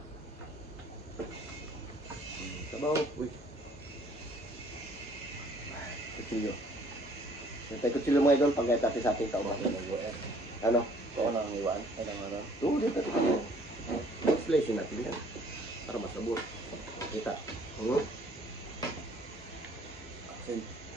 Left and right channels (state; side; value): normal; both; correlation 0.58